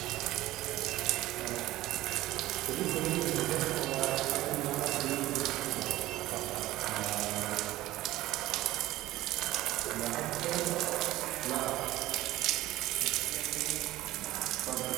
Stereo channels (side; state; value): left; quieter; 16.3 dB